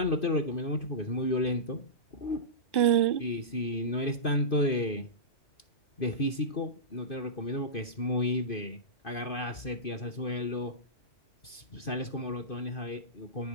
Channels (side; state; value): right; late; 2.5 ms